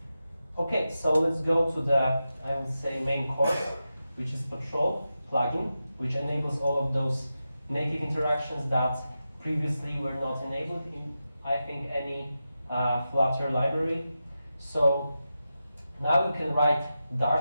Okay, so let's go to the, I would say, main course, which is Patrol plugin, which enables all of those native interactions that previously were not enabled in, I think, any Flutter library. So now you can write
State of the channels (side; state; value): both; inverted; correlation -0.91